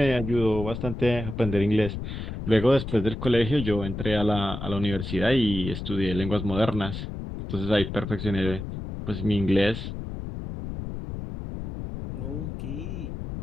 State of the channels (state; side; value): noise; left; rumble, 7 dB below the sound